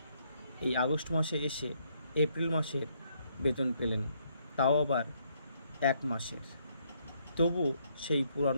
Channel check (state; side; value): inverted; both; correlation -0.72